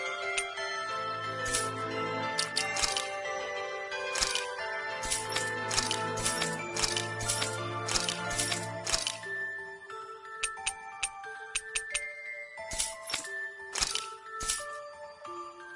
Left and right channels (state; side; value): identical; both; correlation 1.00